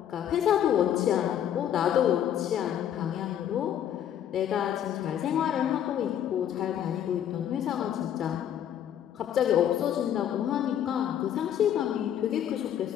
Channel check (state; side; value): quieter; right; 10.1 dB